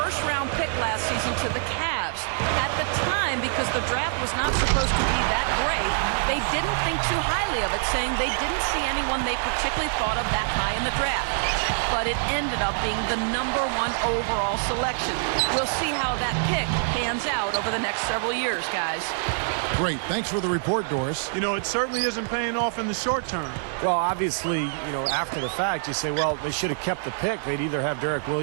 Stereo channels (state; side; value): silent; left; 61 dB below the other